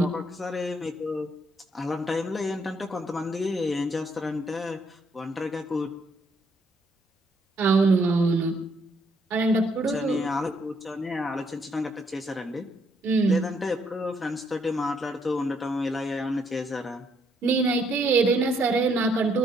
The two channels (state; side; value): normal; both; correlation 0.71